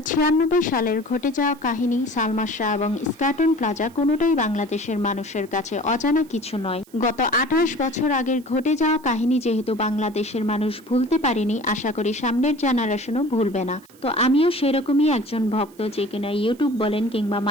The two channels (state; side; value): noise; right; hiss, 27 dB below the sound